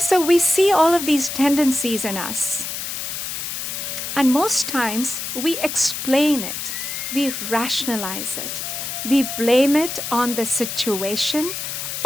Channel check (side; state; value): left; noise; hiss, 5 dB below the sound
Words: we see all of these tendencies in us. And most times we explain it, we rationalize it, we blame it on the situation